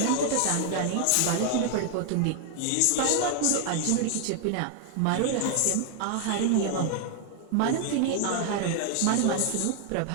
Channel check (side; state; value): both; different; correlation 0.00